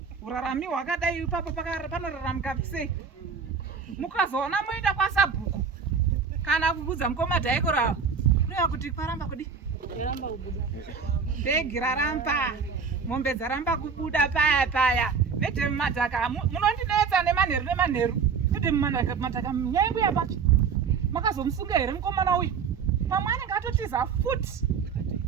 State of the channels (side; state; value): left; quieter; 5.9 dB